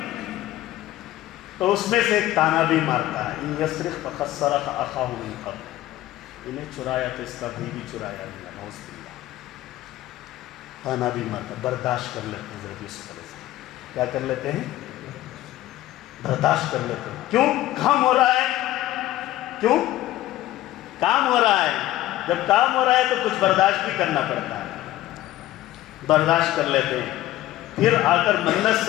تو اس میں سے ایک تانا بھی مارتا ہے، ان یسرق فقد سرق اخاہ من قبل، انہیں چرایا تو اس کا بھائی بھی چرایا گیا، نعوذ باللہ۔ تانا بھی مارتا، برداشت کر لیتے ہیں حضرت یوسف علیہ السلام، کیا کر لیتے ہیں؟ برداشت کر لیتے ہیں۔ کیوں؟ کام ہو رہا ہے، کیوں؟ کام ہو رہا ہے، جب کام ہو رہا ہے تو کچھ برداشت بھی کرنا پڑتا ہے، برداشت کر لیتے ہیں۔ پھر آ کر منت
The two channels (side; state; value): right; quieter; 15.0 dB